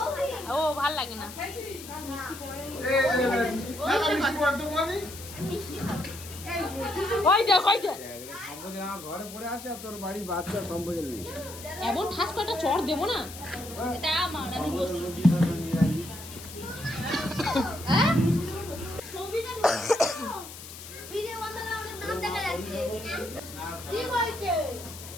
ও ভাল লাগে না। ওই দেখ, ওই দেখ ঘরে পড়ে আছে আর তোর বাড়ির বাচ্চা সম্বোধন নেই। এমন ঠাস কটা চড় দেবো না, এটা মারা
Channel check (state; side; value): noise; left; hiss, 13 dB below the sound